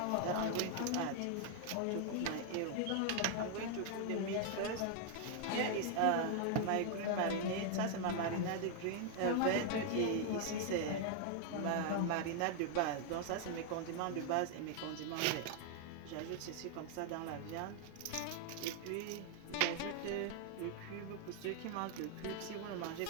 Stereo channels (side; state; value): both; different; correlation 0.00